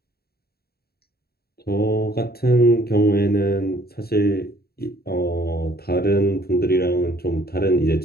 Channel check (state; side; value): late; right; 0.45 ms